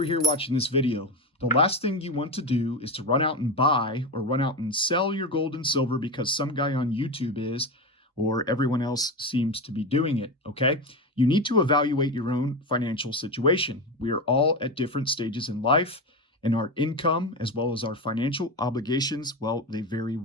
here watching this video. The last thing you want to do is to run out and buy or run out and sell your gold and silver because some guy on YouTube is, or everyone else seems to be doing it, okay? You need to evaluate your own financial situation. We are all at different stages in life, and our income as well as our financial obligations, well, they vary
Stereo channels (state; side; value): normal; both; correlation 0.19